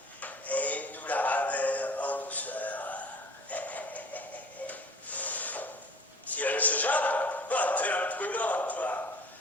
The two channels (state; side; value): normal; both; correlation 0.46